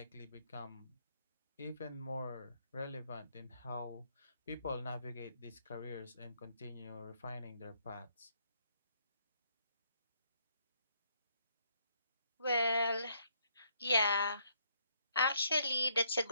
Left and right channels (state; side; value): inverted; both; correlation -0.72